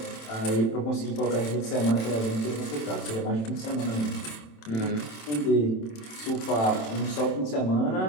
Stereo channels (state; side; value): late; right; 27 ms